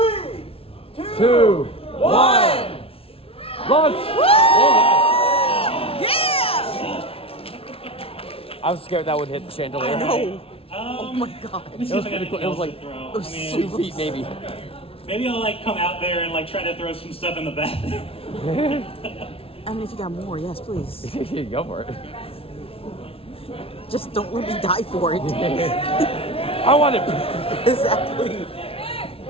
2, 1. Launch! Yeah! I was scared that would hit the chandelier. I know. Oh my god. Let me see It was if I got pretty cool. anything It was else like to throw. it was 2 feet maybe. Maybe I'll like come out there and like try to throw some stuff in the back. I mean, if you got more, yes, please. Go for it. Just don't let me die for it. I want it. Exactly.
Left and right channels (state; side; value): late; right; 0.27 ms